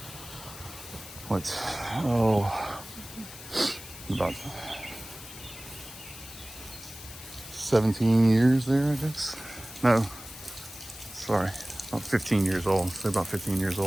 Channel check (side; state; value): left; noise; hiss, 14 dB below the sound